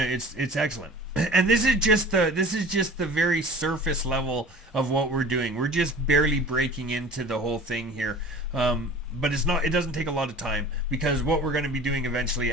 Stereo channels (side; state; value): both; normal; correlation 0.42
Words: excellent. And this is just the very surface level of what we're doing. We're just barely breaking into the whole thing here. But it doesn't take a lot of time, because what we're going to be doing eventually